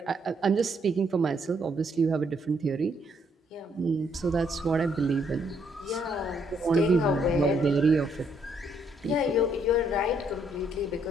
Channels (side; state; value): both; normal; correlation 0.71